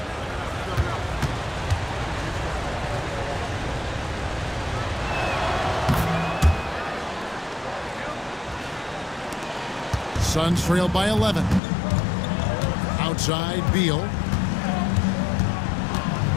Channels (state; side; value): drops out; right; at 11.6 s